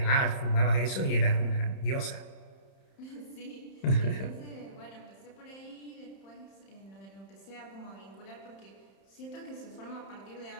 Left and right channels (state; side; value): late; right; 31 ms